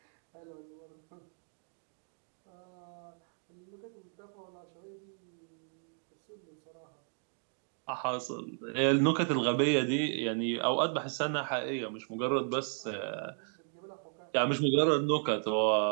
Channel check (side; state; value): left; silent; 55 dB below the other